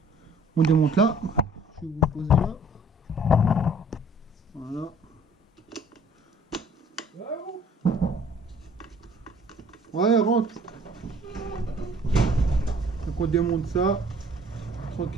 On démonte là. Je vais vous poser là. Voilà. Ouais, rentre. Donc on démonte ça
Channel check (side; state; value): both; normal; correlation 0.54